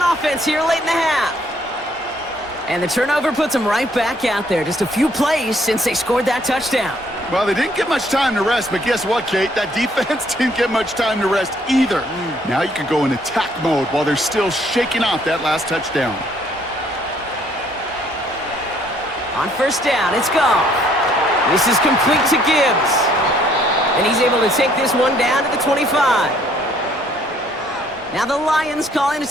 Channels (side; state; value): both; normal; correlation 0.64